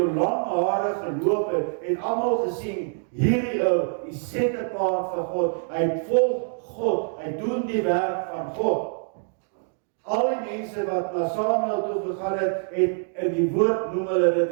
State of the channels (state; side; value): silent; left; digital silence